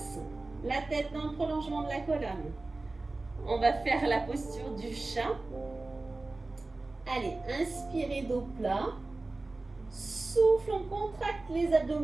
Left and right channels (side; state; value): left; quieter; 3.2 dB